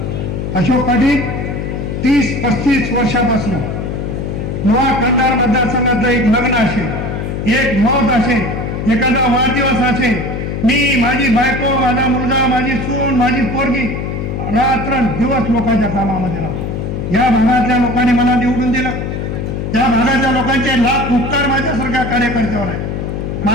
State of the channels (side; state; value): left; noise; hum, 4 dB below the sound